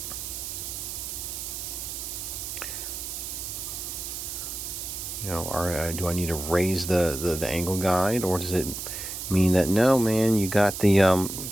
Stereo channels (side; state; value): right; noise; hiss, 6 dB below the sound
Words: Or do I need to raise the angle guide, or does it mean that no, man, you got the